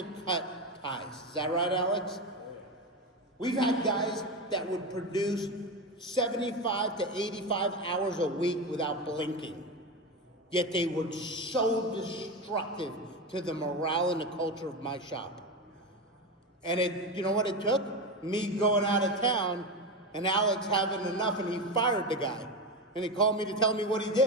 cut ties. Is that right, Alex? We've had guys that would produce 75 to 85 hours a week without blinking. Yet they were so destructive to the morale and the culture of my shop. And you know what it took? Me going out of town and Alex having enough, and he fired the guy. And he called me to tell me what he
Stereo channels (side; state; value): both; normal; correlation 0.18